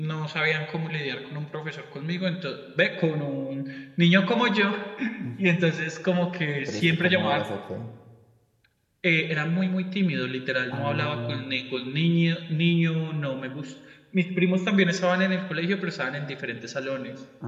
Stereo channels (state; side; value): identical; both; correlation 1.00